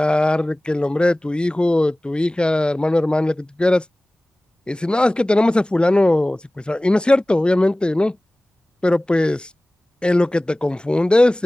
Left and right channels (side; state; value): both; normal; correlation 0.98